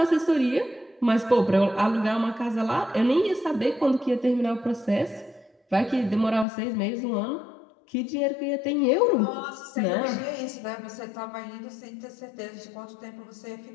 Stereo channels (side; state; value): right; drops out; at 6.5 s